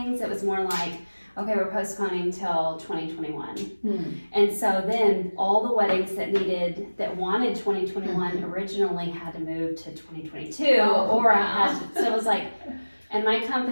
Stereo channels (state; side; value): inverted; both; correlation -1.00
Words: It was more like, okay, we're postponing till 2021. And so then all the weddings that wanted 2021 originally had to move to 2022, so it was like. And my